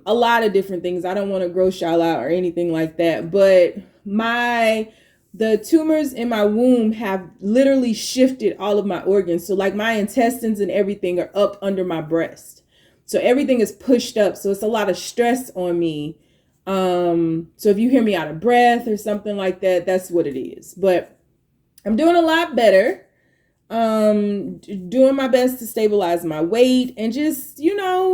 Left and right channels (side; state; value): both; identical; correlation 1.00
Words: lot of different things. I don't want to gross y'all out or anything like that, but the tumors in my womb have literally shifted all of my organs. So like my intestines and everything are up under my breast. So everything is pushed up. So it's a lot of stress on me. So if you hear me out of breath or something like that, that's what it is. But I'm doing a lot better. Doing my best to stabilize my weight and just,